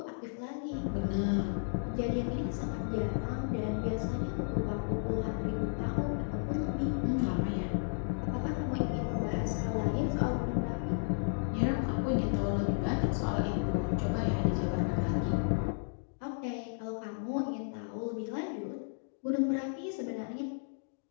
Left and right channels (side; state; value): right; silent; digital silence